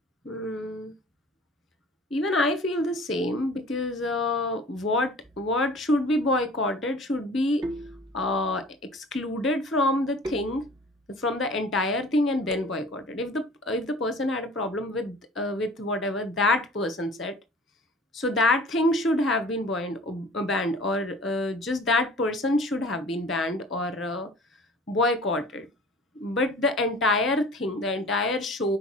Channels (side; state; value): both; normal; correlation 0.46